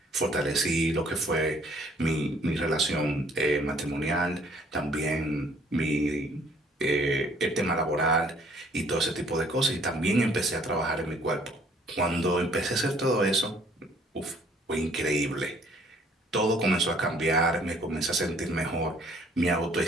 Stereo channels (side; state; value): both; normal; correlation 0.60